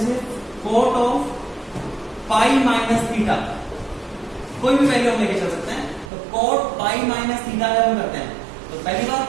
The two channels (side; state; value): left; drops out; at 6.1 s